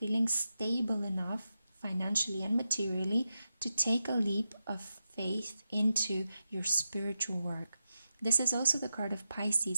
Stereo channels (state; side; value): inverted; both; correlation -0.89